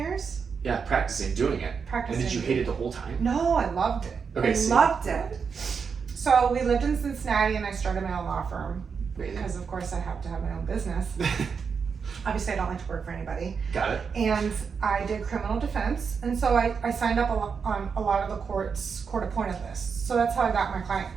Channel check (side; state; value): left; quieter; 5.9 dB